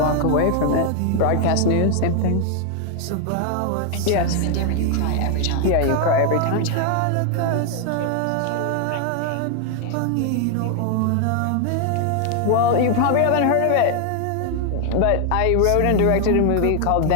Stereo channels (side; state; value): both; different; correlation 0.00